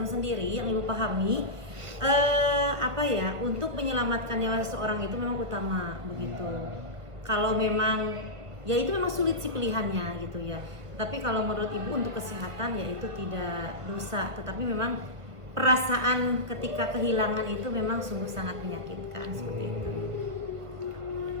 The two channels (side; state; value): left; late; 1.6 ms